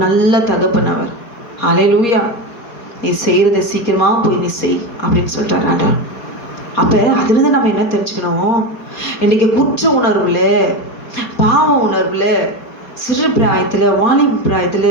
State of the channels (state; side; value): late; right; 4.2 ms